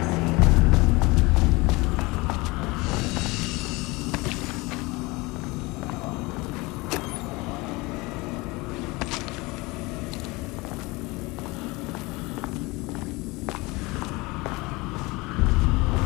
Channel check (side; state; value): right; quieter; 23.7 dB